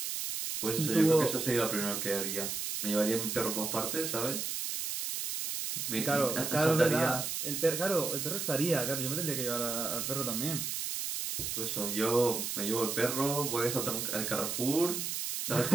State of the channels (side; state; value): right; noise; hiss, 3 dB below the sound